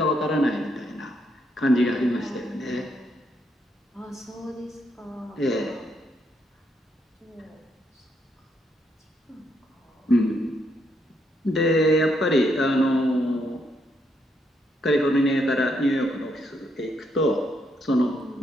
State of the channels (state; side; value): normal; both; correlation 0.76